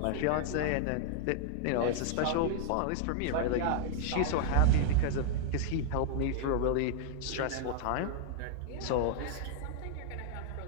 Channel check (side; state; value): both; different; correlation -0.01